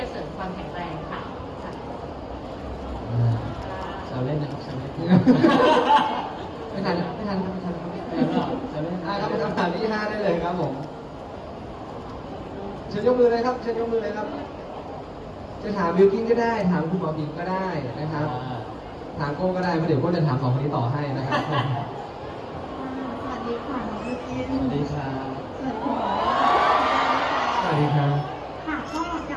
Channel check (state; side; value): identical; both; correlation 1.00